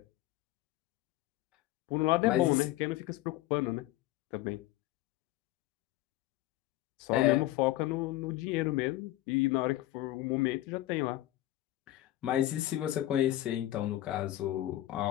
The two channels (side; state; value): right; quieter; 15.5 dB